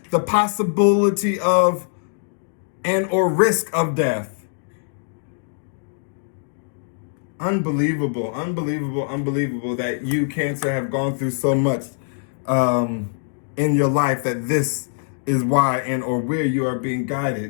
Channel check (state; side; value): silent; right; digital silence